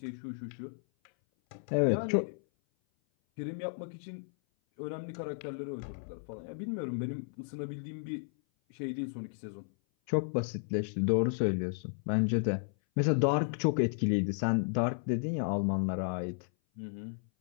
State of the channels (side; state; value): right; silent; 55 dB below the other